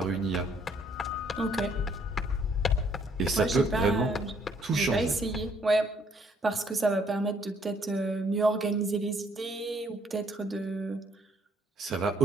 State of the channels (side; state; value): both; normal; correlation 0.65